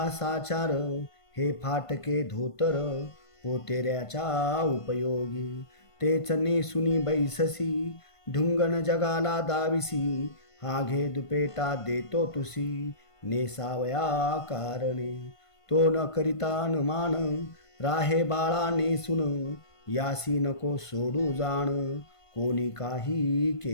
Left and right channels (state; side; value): late; right; 1.5 ms